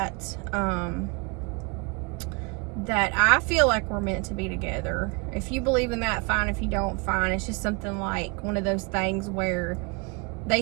That I feel like we're meant to be together. If you believe in that, fine. If you don't, fine. It's just something like one of those things where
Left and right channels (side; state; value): left; quieter; 31.0 dB